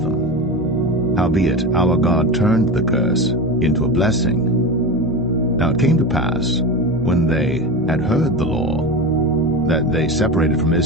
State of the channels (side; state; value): both; normal; correlation 0.24